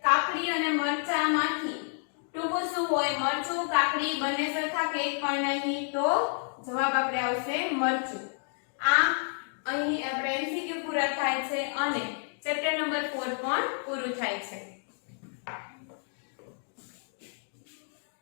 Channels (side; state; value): right; silent; 58 dB below the other